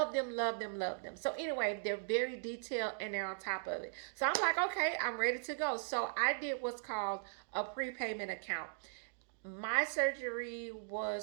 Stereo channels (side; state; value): left; silent; digital silence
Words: them, love them, love them. So anyway, they're very detailed and they're on top of it. So I'm like, okay, I'm ready to go. So I did what's called a prepayment account. My surgery